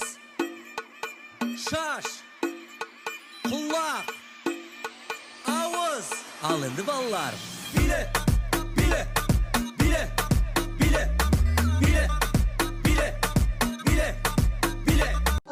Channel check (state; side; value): identical; both; correlation 1.00